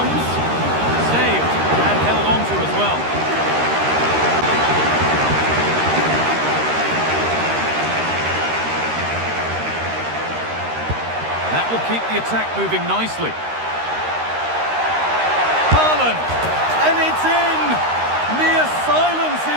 Saved and held on to as well. That will keep the attack moving nicely. Haaland, and it's in! Near silence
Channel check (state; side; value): late; left; 13 ms